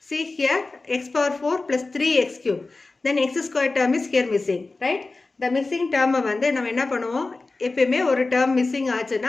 See here x power 4 plus 3x cube. Then x squared term is here missing, right? The missing term வந்து நம்ம என்ன பண்ணுவோம்? எப்பவுமே ஒரு term missing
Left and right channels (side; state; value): right; quieter; 3.5 dB